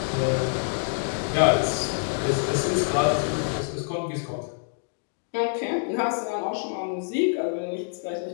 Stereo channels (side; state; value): right; silent; digital silence